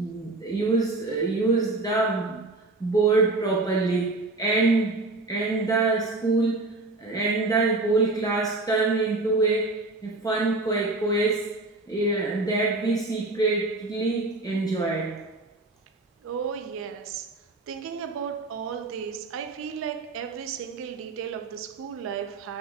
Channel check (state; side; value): quieter; left; 3.1 dB